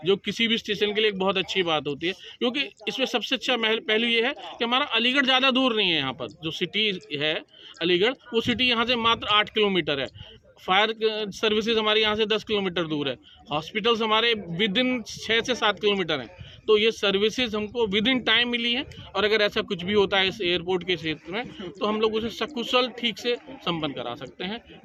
जो किसी भी स्टेशन के लिए एक बहुत अच्छी बात होती है। क्योंकि इसमें सबसे अच्छा पहलू ये है कि हमारा अलीगढ़ ज़्यादा दूर नहीं है। यहाँ पर जो सिटी है अलीगढ़, वो सिटी यहाँ से मात्र 8 किलोमीटर है। फायर सर्विसेज हमारे यहाँ से 10 किलोमीटर दूर है। हॉस्पिटल्स हमारे विद इन 6 से 7 किलोमीटर हैं। तो ये सर्विसेज हमको विद इन टाइम मिली है, और अगर ऐसा कुछ भी होता है इस एयरपोर्ट के क्षेत्र में, तो हम लोग उसे सकुशल ठीक से संपन्न करा सकते हैं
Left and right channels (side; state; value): both; identical; correlation 1.00